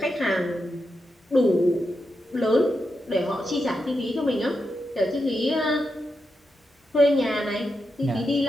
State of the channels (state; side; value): normal; both; correlation 0.87